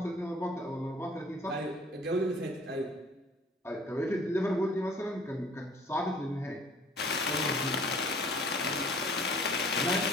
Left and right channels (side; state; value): both; normal; correlation 0.52